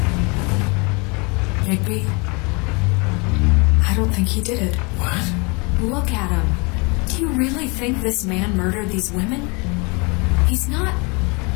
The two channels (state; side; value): quieter; right; 30.2 dB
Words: Bigby, I don't think he did it. What? Look at him. Do you really think this man murdered these women? He's not...